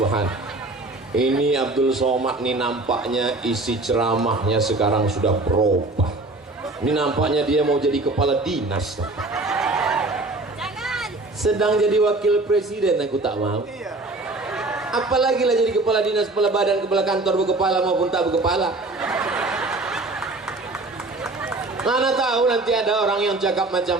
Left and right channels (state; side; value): quieter; left; 3.0 dB